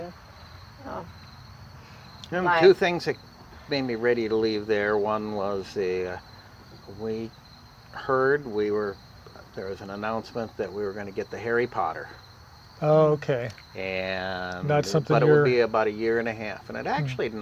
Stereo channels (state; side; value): identical; both; correlation 1.00